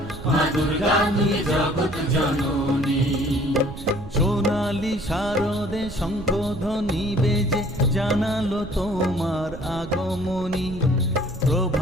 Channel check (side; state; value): right; noise; rumble, 12 dB below the sound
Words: মা দুর্গা তুমি জগৎ জননী। সোনালি শারদে শঙ্খধ্বনি বেজে জানালো তোমার আগমনী।